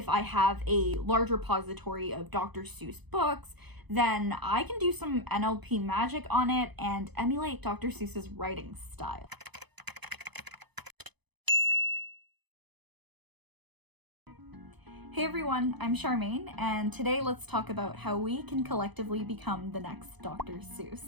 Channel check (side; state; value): left; late; 0.99 ms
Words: I have a large repository of Dr. Seuss books, then I can do some NLP magic on it and emulate Dr. Seuss's writing style. Hey everyone, I'm Charmaine, and today let's talk about how we can collectively become the next Dr.